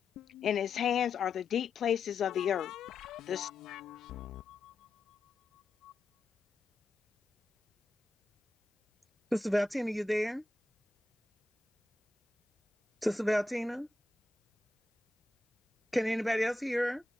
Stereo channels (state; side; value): quieter; right; 3.2 dB